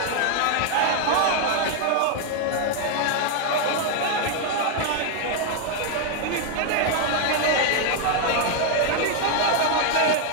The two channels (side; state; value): both; different; correlation 0.00